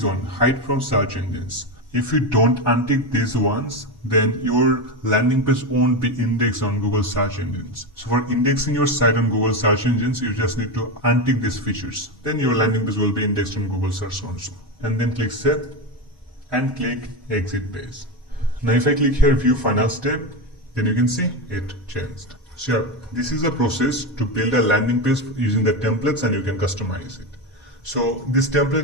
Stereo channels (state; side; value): normal; both; correlation 0.15